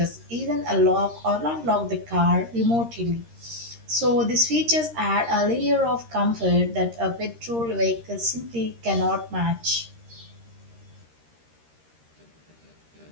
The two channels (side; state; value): left; late; 13 ms